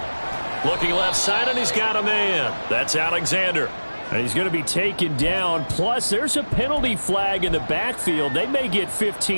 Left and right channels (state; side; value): inverted; both; correlation -1.00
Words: Looking left side, and he's got a man. That's Alexander. And he's going to be taken down. Plus, there's a penalty flag in the backfield. They may get